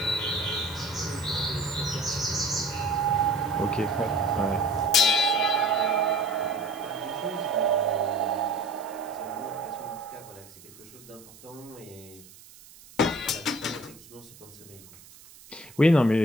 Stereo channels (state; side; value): noise; right; hiss, 21 dB below the sound